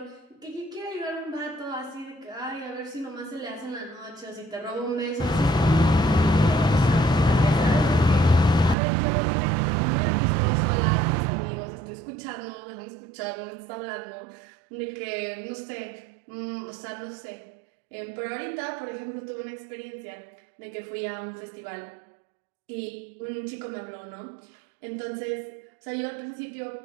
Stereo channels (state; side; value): drops out; left; at 8.8 s